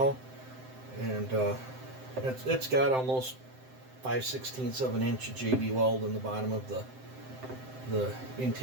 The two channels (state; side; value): late; left; 7.7 ms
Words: And it's got almost 5/16 of an inch of JB weld in the bottom of the